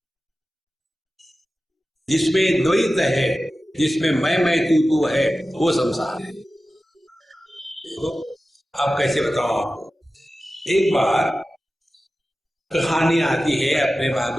जिसमें द्वैत है, जिसमें मैं तू है, वो संसार है। देखो, अब कैसे बताऊं आपको। एक बार कहानी आती है अपने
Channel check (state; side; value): normal; both; correlation 0.95